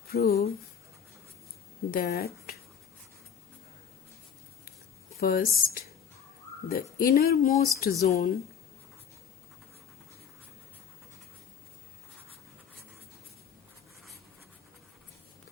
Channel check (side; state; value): right; quieter; 7.5 dB